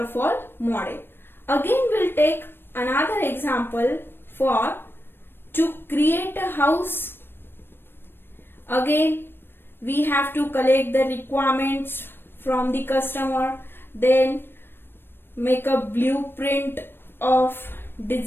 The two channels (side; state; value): right; late; 0.10 ms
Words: model. Again we'll take another example for to create a house. Again we have to collect the requirements from the customer, then make a blueprint of